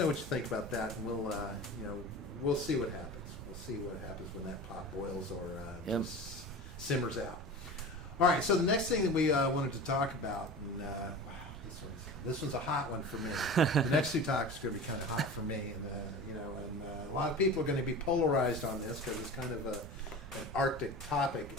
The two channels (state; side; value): noise; right; rumble, 12 dB below the sound